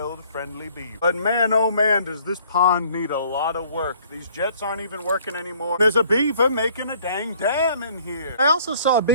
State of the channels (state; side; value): inverted; both; correlation -0.58